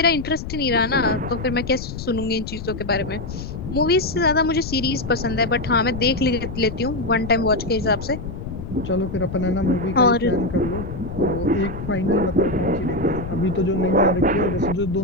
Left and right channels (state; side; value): noise; left; rumble, 8 dB below the sound